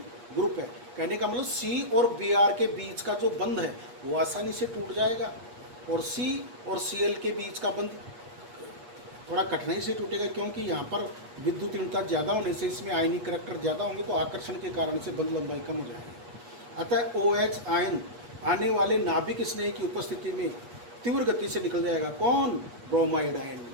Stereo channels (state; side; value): late; left; 8.4 ms